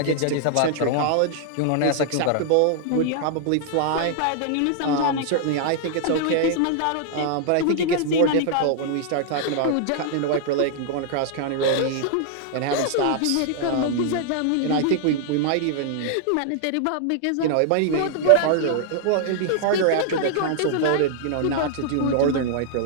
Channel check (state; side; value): different; both; correlation -0.01